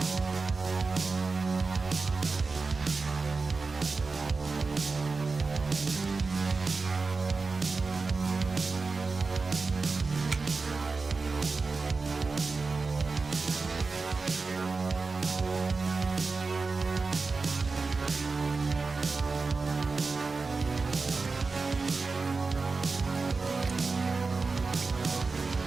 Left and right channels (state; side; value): quieter; left; 4.1 dB